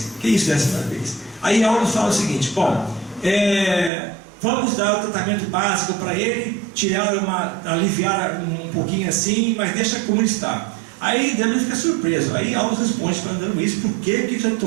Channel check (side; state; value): left; drops out; at 3.9 s